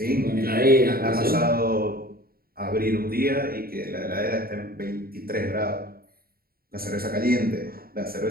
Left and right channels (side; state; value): left; late; 0.43 ms